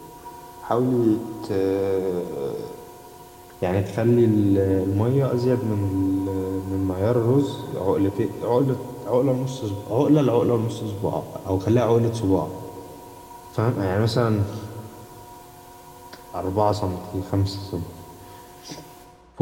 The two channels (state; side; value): identical; both; correlation 1.00